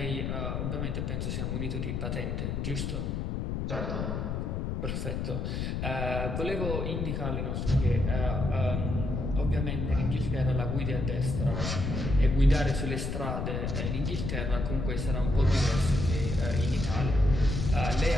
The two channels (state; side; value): noise; left; rumble, 2 dB below the sound